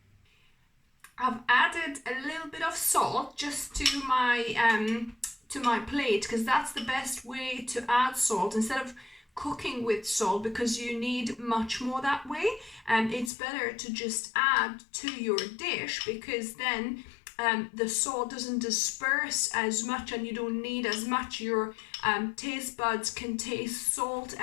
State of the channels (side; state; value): right; drops out; at 13.3 s